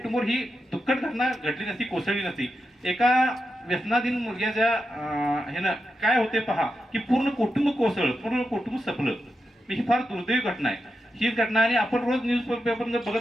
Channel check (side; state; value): both; normal; correlation 0.87